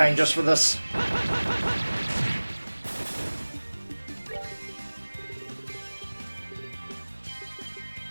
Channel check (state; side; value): inverted; both; correlation -1.00